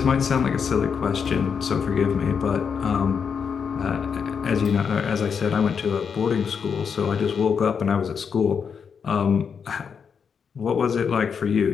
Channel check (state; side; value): quieter; right; 6.5 dB